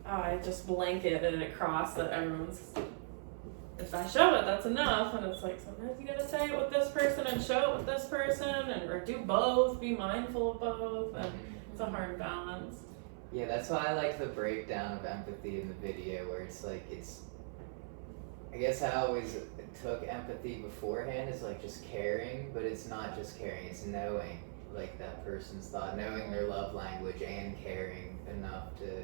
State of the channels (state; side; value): silent; left; 52 dB below the other